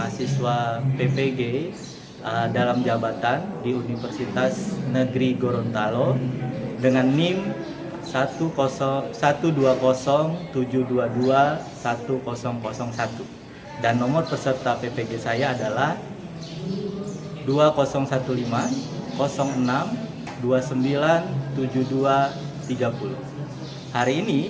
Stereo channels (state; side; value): identical; both; correlation 1.00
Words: PPG dalam jabatan di Universitas Negeri Gorontalo dengan NIM 120722101 dan nomor peserta PPG saya adalah 2015 06 297230. Hari